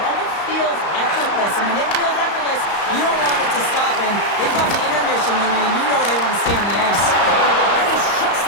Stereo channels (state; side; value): late; right; 35 ms